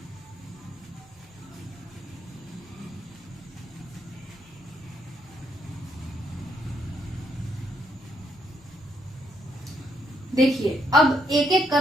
देखिए, अब एक एक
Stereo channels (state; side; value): normal; both; correlation 0.74